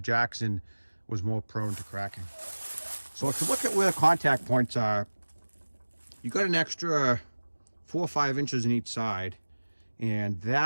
was more prone to cracking. So if you look at where the contact points are, you got an extra 4 or 5 inches in each side, and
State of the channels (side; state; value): both; inverted; correlation -1.00